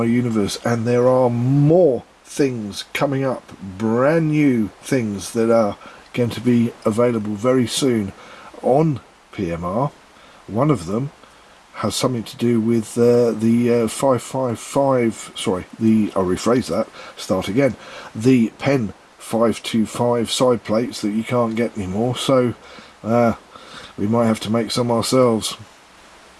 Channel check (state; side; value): identical; both; correlation 1.00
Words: universe, and there are more things coming up, brand new things that are going to be available very soon on PMR. One of them has something to do with the 555, sorry, I'll rephrase that, start again, the Pen 525 side plates that you can't get anymore, so we might have to make some ourselves.